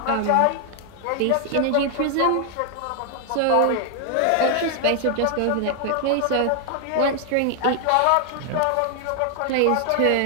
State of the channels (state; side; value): different; both; correlation 0.00